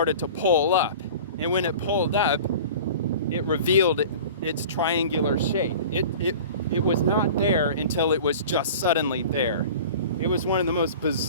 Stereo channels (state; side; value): inverted; both; correlation -0.39